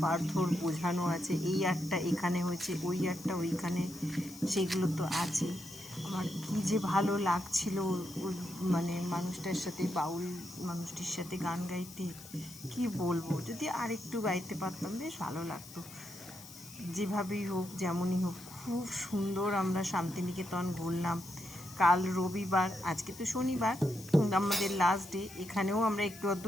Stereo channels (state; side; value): noise; left; hiss, 16 dB below the sound